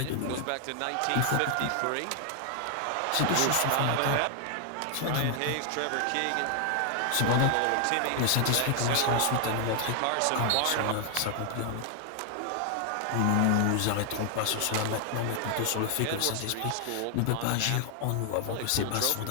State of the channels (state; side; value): different; both; correlation 0.00